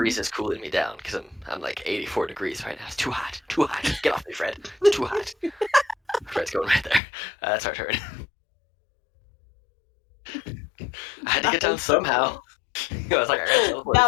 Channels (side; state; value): right; drops out; at 7.0 s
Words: is cooling me down because I'm like 84 degrees right now. It's too hot, too hot. Get off me, Fred. It's too hot. Fred's going right there. That's our turn. I had to That get down was so somehow. cool. I was like, I gotta teleport